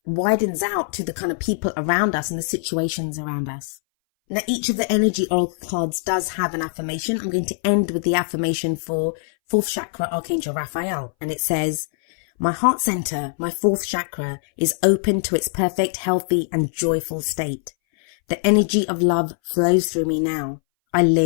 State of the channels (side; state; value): right; silent; 61 dB below the other